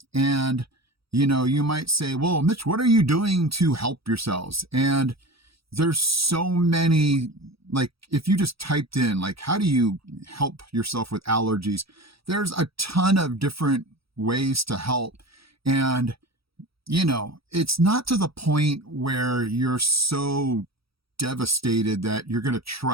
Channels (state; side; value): late; left; 0.76 ms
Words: and you might say, "Well, Mitch, what are you doing to help yourselves?" And there's so many, like if you just typed in like how do you help yourself with allergies, there's a ton of different ways to help. And it's not to the point where you're so devastated that you're going to